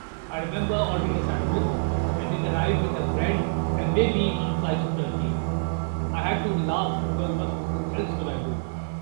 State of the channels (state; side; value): silent; left; digital silence